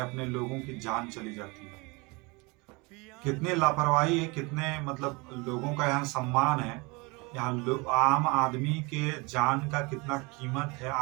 अपने लोगों की जान चली जाती है। कितनी लापरवाही है, कितने मतलब लोगों का यहाँ सम्मान है। यहाँ आम आदमी के जान का कितना कीमत है,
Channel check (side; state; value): left; quieter; 27.1 dB